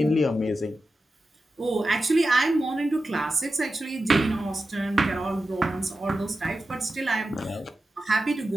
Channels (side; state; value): both; normal; correlation 0.92